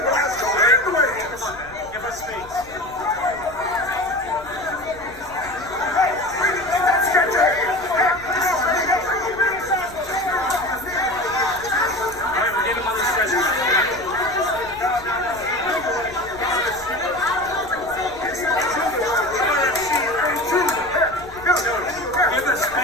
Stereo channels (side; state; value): left; noise; rumble, 20 dB below the sound